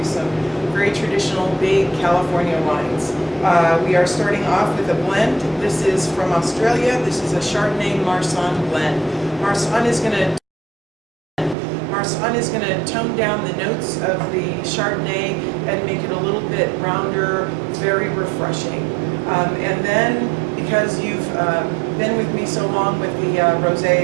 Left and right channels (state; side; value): drops out; left; at 11.6 s